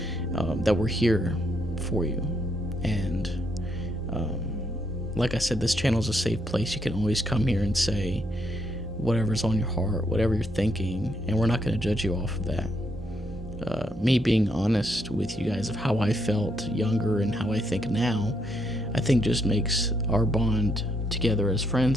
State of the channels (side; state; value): both; normal; correlation 0.76